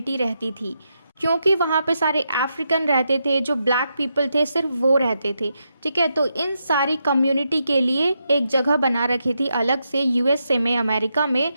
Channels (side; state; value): both; inverted; correlation -0.83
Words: रहती थी, क्योंकि वहाँ पे सारे अफ्रीकन रहते थे, जो ब्लैक पीपल थे सिर्फ वो रहते थे। ठीक है, तो इन सारी कम्युनिटी के लिए एक जगह बना रखी थी अलग से यूएसए में, अमेरिका में,